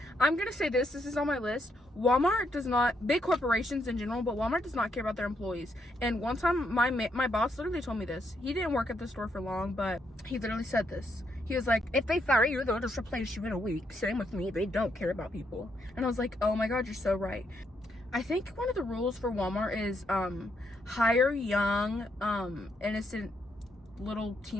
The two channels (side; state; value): both; normal; correlation 0.77